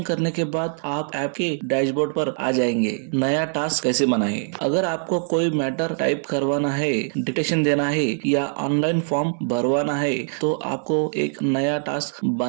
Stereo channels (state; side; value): silent; left; digital silence